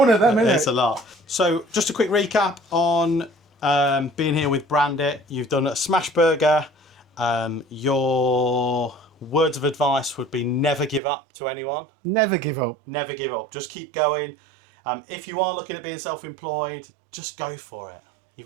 of them, isn't it? It's a lot. So just a quick recap on being here with Brandit. You've done a smash burger. Your words of advice would be never give up to anyone. Never give up. Never give up. Just keep going. If you are looking at being self-employed, just go for it. You've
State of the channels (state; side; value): drops out; left; at 11.0 s